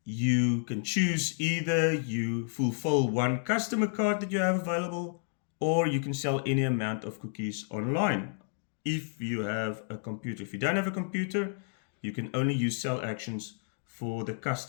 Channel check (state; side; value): silent; right; digital silence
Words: you can choose either you fulfill 1 customer card that you have available, or you can sell any amount of cookies online. If you have a computer. If you don't have a computer, you can only use sell actions for the